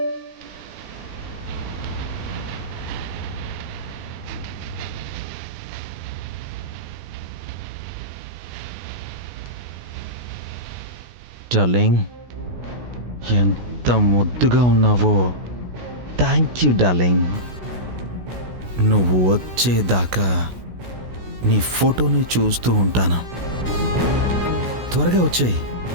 డార్లింగ్. ఎంత ముద్దుగా ఉన్నావో. Thank you darling. నువ్వు వచ్చేదాకా నీ ఫోటోని చూస్తూ ఉంటాను. త్వరగా వచ్చేయి.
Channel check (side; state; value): left; late; 16 ms